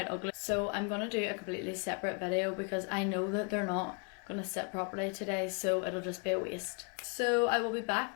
ugly. So I'm going to do a completely separate video because I know that they're not going to sit properly today, so it'll just be a waste. So I will be back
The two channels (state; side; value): quieter; right; 36.6 dB